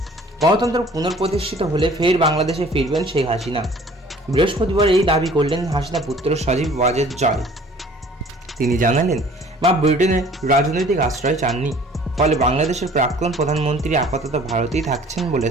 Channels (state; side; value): normal; both; correlation 0.52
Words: গণতন্ত্র পুনঃপ্রতিষ্ঠিত হলে ফের বাংলাদেশে ফিরবেন শেখ হাসিনা। বৃহস্পতিবার এই দাবি করলেন হাসিনা পুত্র সজীব ওয়াজেদ জয়। তিনি জানালেন, মা ব্রিটেনে রাজনৈতিক আশ্রয় চাননি, ফলে বাংলাদেশের প্রাক্তন প্রধানমন্ত্রী আপাতত ভারতেই থাকছেন বলে